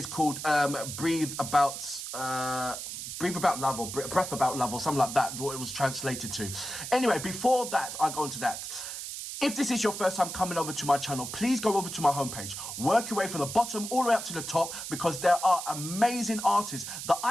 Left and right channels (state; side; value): noise; right; hiss, 7 dB below the sound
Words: called Breathe About Love, or Breath About Love, or something like that, what it was translated to. Anyway, before that, I go into that. If this is your first time coming over to my channel, please go over to my homepage. Work your way from the bottom all the way up to the top, because there are amazing artists that